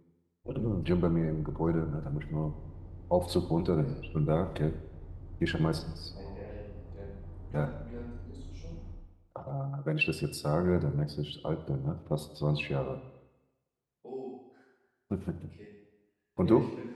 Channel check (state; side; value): identical; both; correlation 1.00